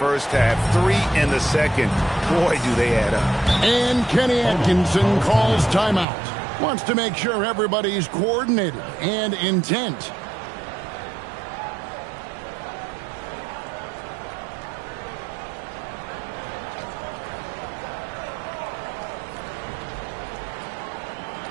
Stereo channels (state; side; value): drops out; left; at 6.1 s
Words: half, 3 in the second. Boy, do they add up. And Kenny Atkinson calls timeout. Wants to make sure everybody's coordinated and intent.